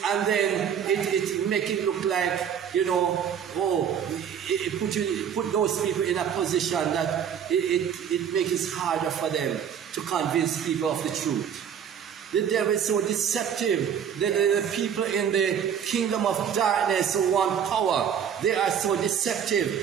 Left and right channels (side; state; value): left; quieter; 8.3 dB